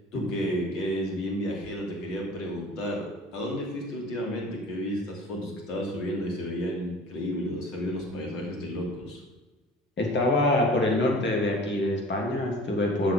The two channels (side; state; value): both; normal; correlation 0.44